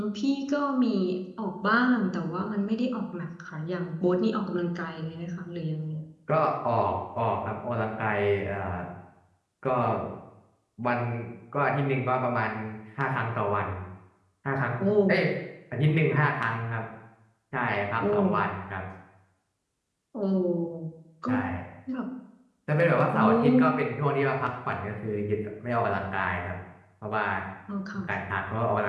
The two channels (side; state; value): both; identical; correlation 1.00